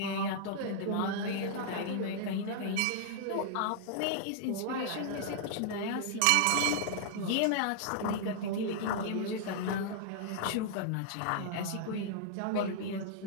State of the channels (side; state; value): both; different; correlation -0.01